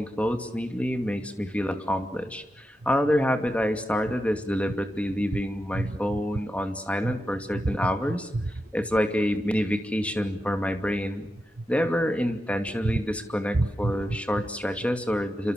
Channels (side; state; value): both; normal; correlation 0.88